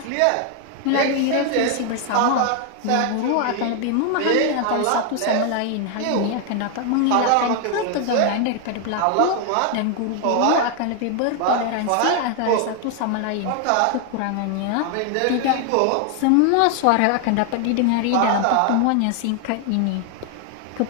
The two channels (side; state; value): both; different; correlation 0.00